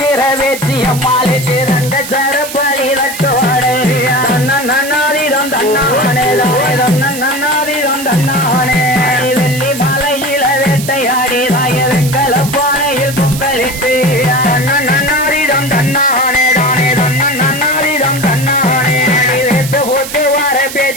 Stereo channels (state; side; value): noise; right; hiss, 10 dB below the sound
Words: வேச்சி அம்மாளுக்கு ரெண்டு சரப்பலி தட்டோடே நன்னாதீரம் தன்னானே தானே நன்னாதீரம் தன்னானே வெள்ளி மலையில வேட்டையாடி தாய வெங்கல பானையில் பொங்கலிட்டு நன்னாதீரம் தன்னானே தானே நன்னாதீரம் தன்னானே வேட்டு போட்டு வர